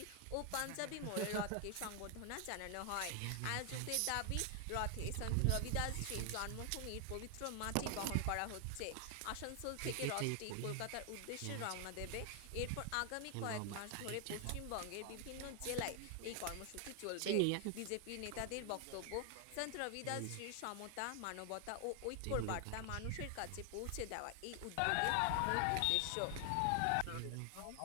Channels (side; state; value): both; different; correlation 0.00